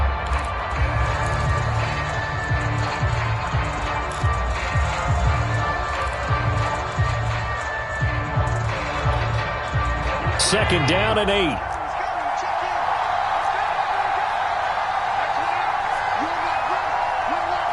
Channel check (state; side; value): identical; both; correlation 1.00